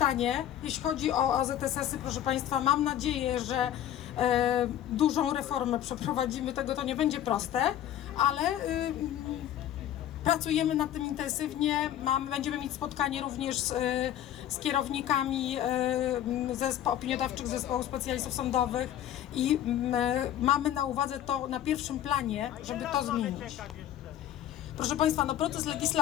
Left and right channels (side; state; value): right; quieter; 11.6 dB